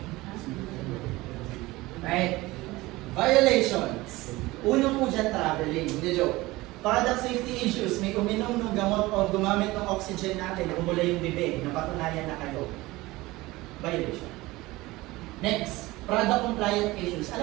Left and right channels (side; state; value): left; quieter; 20.0 dB